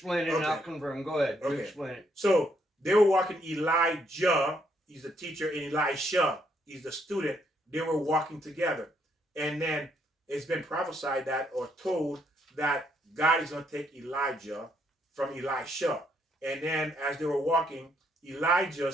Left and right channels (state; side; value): normal; both; correlation 0.72